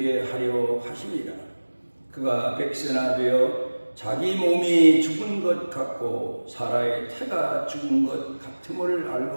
하려 하심이라. 그가 백세나 되어 자기 몸이 죽은 것 같고 사라의 태가 죽은 것 같음을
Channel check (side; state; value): both; inverted; correlation -1.00